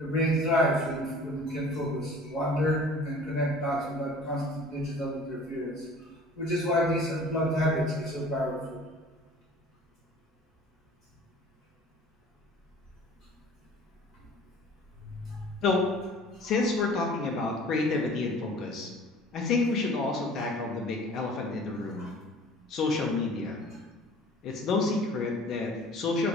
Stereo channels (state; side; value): normal; both; correlation 0.47